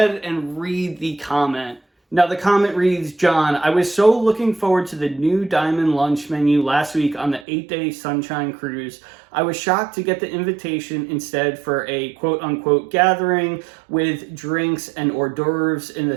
and read the comment. Now, the comment reads, John, I was so looking forward to the new Diamond Lunch menu last week on the 8-day Sunshine Cruise. I was shocked to get the invitation instead for a quote-unquote gathering with drinks and hors d'oeuvres in the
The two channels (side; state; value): left; drops out; at 7.5 s